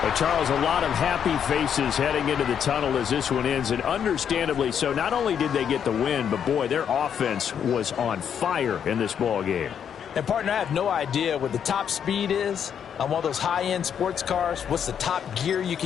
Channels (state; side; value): quieter; right; 8.2 dB